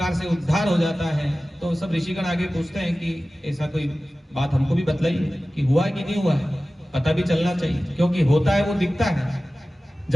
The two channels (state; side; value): normal; both; correlation 0.96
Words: से उद्धार हो जाता है। तो सब ऋषिगण आगे पूछते हैं कि ऐसा कोई बात हमको भी बतलाइए कि हुआ कि नहीं हुआ है, पता भी चलना चाहिए। क्योंकि होता है वो दिखता है,